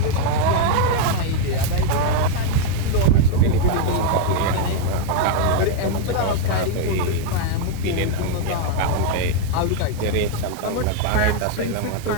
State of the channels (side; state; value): both; different; correlation 0.00